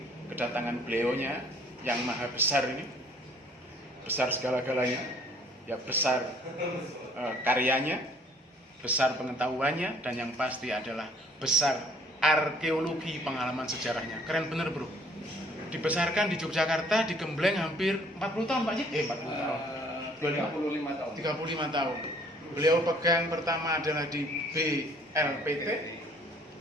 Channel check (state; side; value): normal; both; correlation 0.58